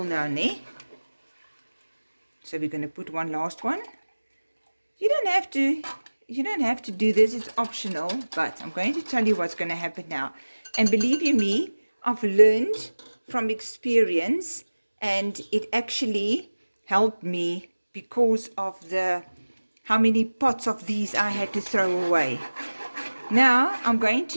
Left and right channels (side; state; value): both; inverted; correlation -1.00